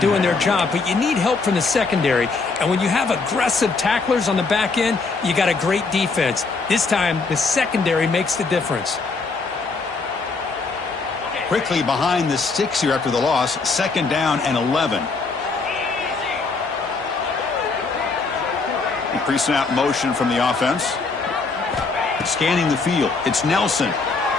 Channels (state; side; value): quieter; right; 4.2 dB